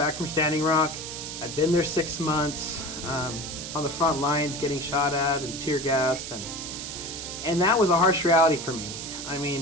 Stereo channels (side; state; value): right; noise; hiss, 8 dB below the sound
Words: from Standing Rock. I'd been there 6 months on the front lines, getting shot at and tear gassed, and that was a harsh reality for me. I